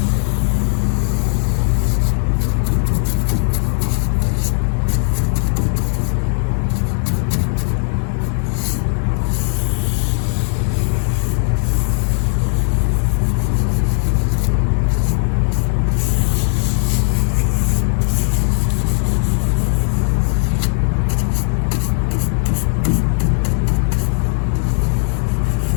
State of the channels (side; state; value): right; silent; digital silence